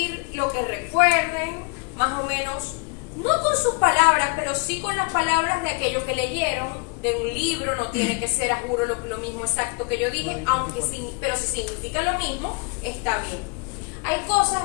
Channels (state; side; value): quieter; right; 31.4 dB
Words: lo que recuerden, más o menos, no con sus palabras, pero sí con las palabras de aquello que leyeron, de un libro. No tiene que ser, a juro, lo mismo exacto que yo dije, pero si significa lo mismo, está bien. Hay cosas,